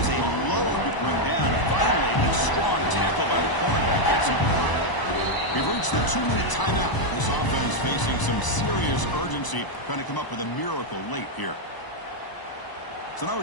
a load to bring down. Finally, a strong tackle by the cornerback gets him. We've reached the 2-minute timeout. This offense facing some serious urgency, trying to come up with a miracle late here. So now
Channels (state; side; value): late; right; 1.0 ms